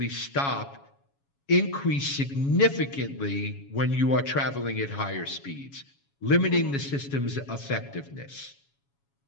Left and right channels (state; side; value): late; right; 7.2 ms